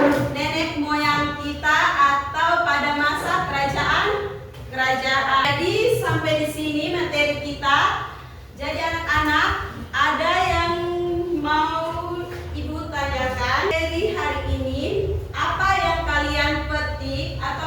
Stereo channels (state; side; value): identical; both; correlation 1.00